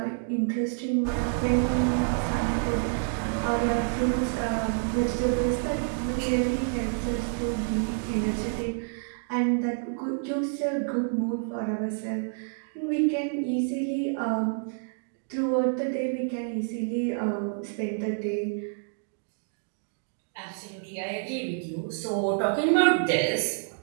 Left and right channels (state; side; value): silent; left; digital silence